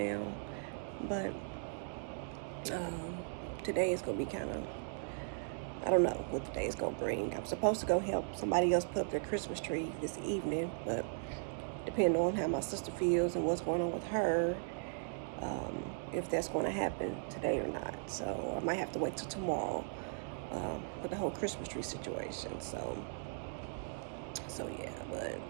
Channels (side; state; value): left; silent; digital silence